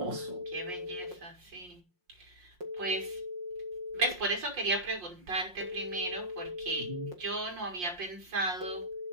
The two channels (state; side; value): late; left; 5.6 ms